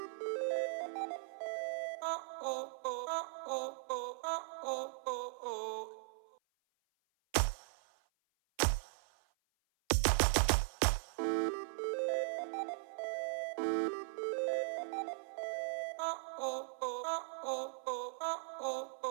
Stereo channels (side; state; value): left; silent; 52 dB below the other